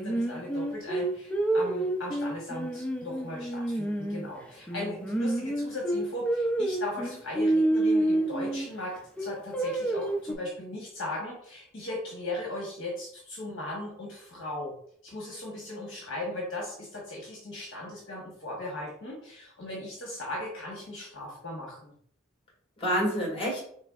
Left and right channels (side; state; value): both; normal; correlation 0.67